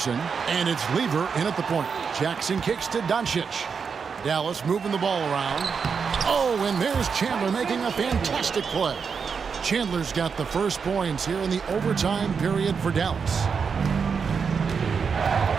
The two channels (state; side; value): quieter; left; 5.9 dB